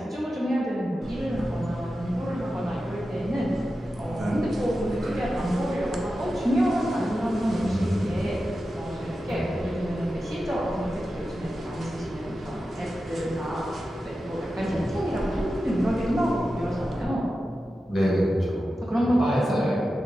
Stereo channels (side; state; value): both; normal; correlation 0.92